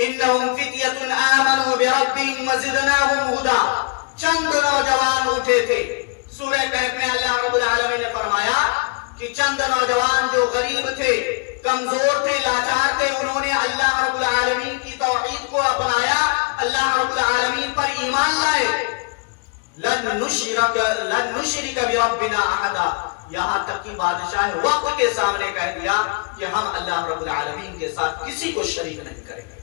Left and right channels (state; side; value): quieter; right; 34.4 dB